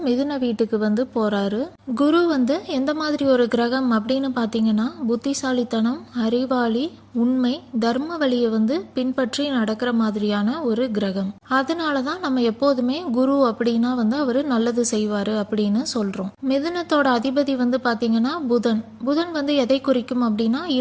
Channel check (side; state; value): both; identical; correlation 1.00